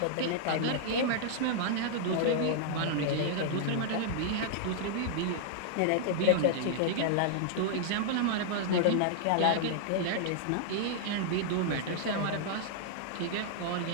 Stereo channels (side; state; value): both; different; correlation -0.01